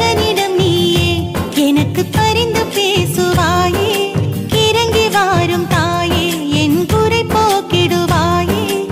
நீயே எனக்கு பரிந்து பேசுவாயே, இறங்கி வாரும் தாயே என் குறை போக்கிடுவாயே.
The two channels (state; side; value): identical; both; correlation 1.00